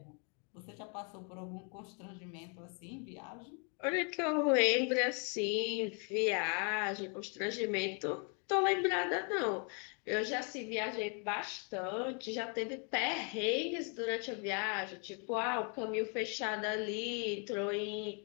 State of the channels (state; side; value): quieter; right; 38.0 dB